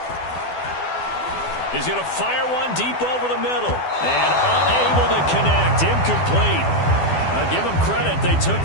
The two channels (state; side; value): late; right; 12 ms